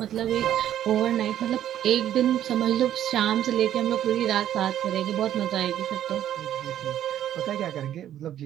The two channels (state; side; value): quieter; left; 11.3 dB